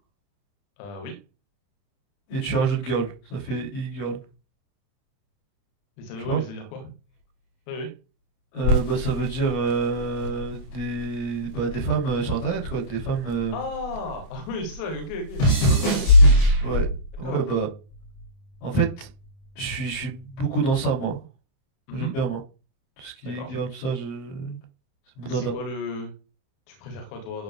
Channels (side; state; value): right; late; 30 ms